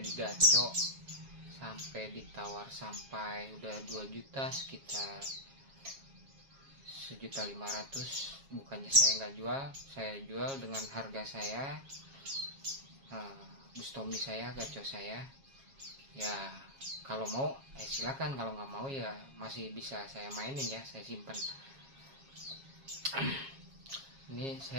gaco, sampai ditawar sampai udah 2 juta, sekitar 1.500.000. Bukannya saya nggak jual, saya jual dengan harga saya, Bustomi saya, gaco saya ya. Kalau mau silakan, kalau nggak mau ya masih bisa saya mainin ya, saya simpan. Ini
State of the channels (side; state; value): left; late; 7.3 ms